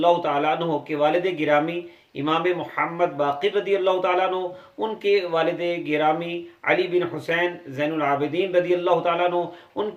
تعالیٰ عنہ کے والد گرامی امام محمد باقر رضی اللہ تعالیٰ عنہ، ان کے والد گرامی علی بن حسین زین العابدین رضی اللہ تعالیٰ عنہ، ان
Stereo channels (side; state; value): both; identical; correlation 1.00